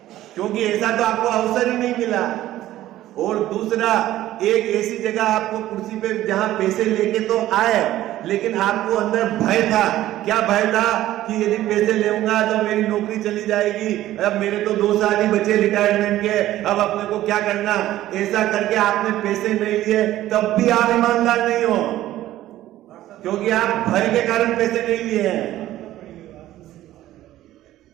क्योंकि ऐसा तो आपको अवसर ही नहीं मिला। और दूसरा, एक ऐसी जगह आपको कुर्सी पे जहां पैसे लेके तो आए, लेकिन आपको अंदर भय था। क्या भय था? कि यदि पैसे लेऊंगा तो मेरी नौकरी चली जाएगी, अब मेरे तो 2 साल ही बचे रिटायरमेंट के, अब अपने को क्या करना। ऐसा करके आपने पैसे नहीं लिए, तब भी आप ईमानदार नहीं हो, क्योंकि आप भय के कारण पैसे नहीं लिए हैं।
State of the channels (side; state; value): left; quieter; 14.3 dB